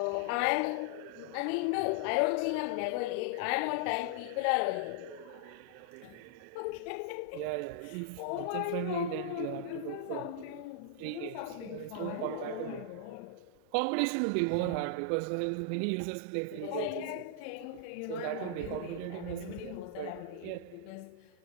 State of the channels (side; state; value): both; different; correlation -0.01